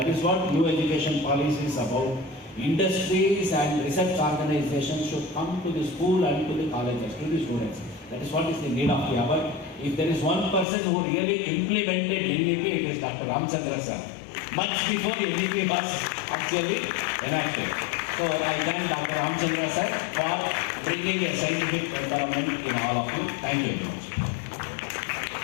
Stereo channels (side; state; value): right; drops out; at 10.7 s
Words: is what new education policy is about. Industries and research organizations should come to the school and to the colleges, to the students. That is what is the need of the hour. If there is one person who really implemented NEP, it is Dr. Ramachandra sir. Much before NEP was actually enacted. So I thank Dr. Ramachandra sir for bringing a scientific development in all of you. Thank you very much.